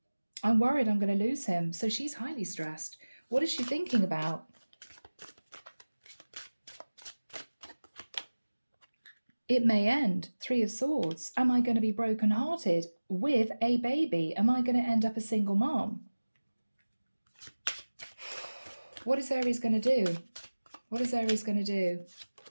I'm worried I'm going to lose him. So she's highly stressed. What is she thinking about? It may end. 3 of Swords. Am I going to be brokenhearted with a baby? Am I going to end up a single mom? What is Aries going to do? What is Aries going to do?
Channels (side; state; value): both; inverted; correlation -1.00